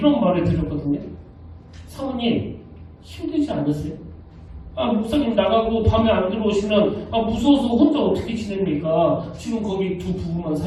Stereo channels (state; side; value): identical; both; correlation 1.00